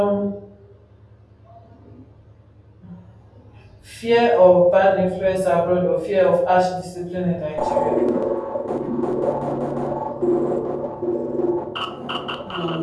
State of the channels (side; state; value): both; identical; correlation 1.00